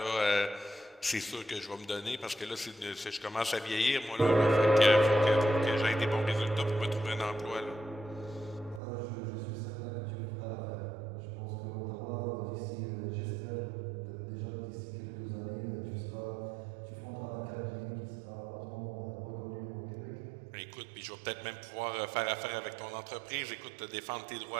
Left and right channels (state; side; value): drops out; left; at 8.8 s